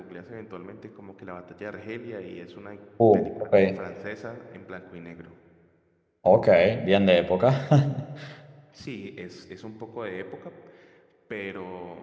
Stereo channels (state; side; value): identical; both; correlation 1.00